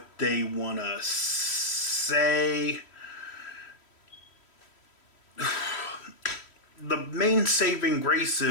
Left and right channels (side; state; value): right; late; 3.1 ms